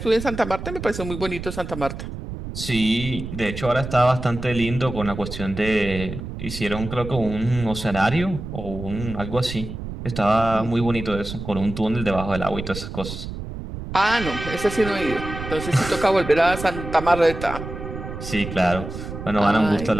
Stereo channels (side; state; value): right; noise; rumble, 8 dB below the sound